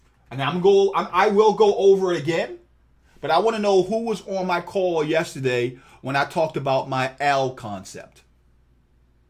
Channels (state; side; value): identical; both; correlation 1.00